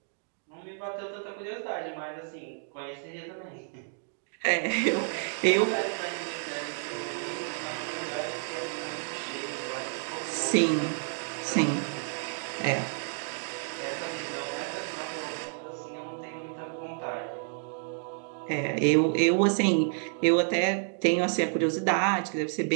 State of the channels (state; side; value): silent; left; 55 dB below the other